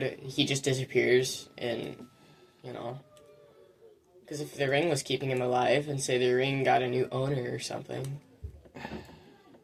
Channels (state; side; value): identical; both; correlation 1.00